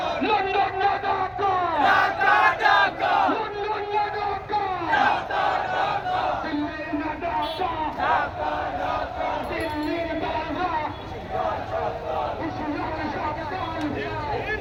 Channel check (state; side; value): identical; both; correlation 1.00